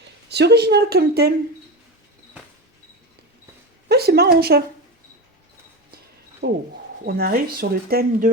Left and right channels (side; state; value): both; normal; correlation 0.22